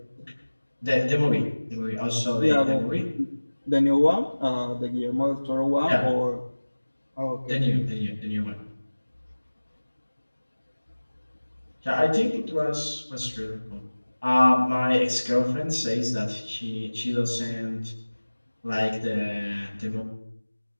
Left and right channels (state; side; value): inverted; both; correlation -1.00